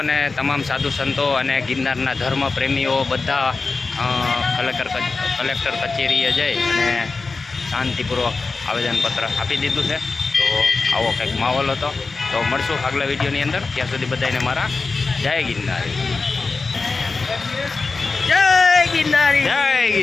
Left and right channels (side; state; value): right; quieter; 4.1 dB